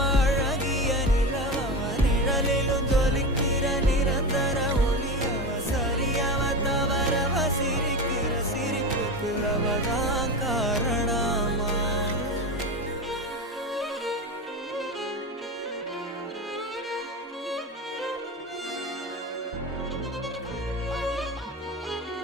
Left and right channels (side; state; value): both; normal; correlation 0.22